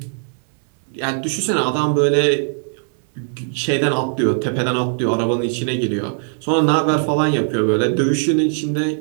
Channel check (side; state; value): left; silent; 59 dB below the other